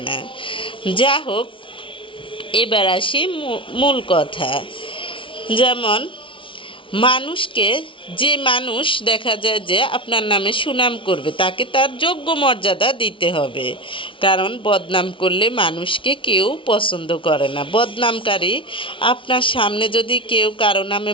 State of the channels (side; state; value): right; late; 0.25 ms